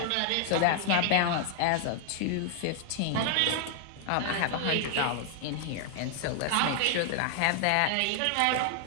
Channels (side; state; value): both; different; correlation 0.00